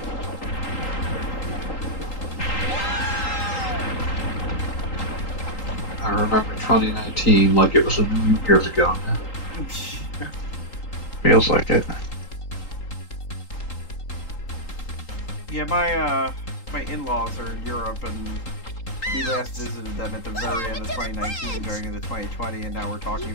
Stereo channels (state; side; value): late; right; 3.8 ms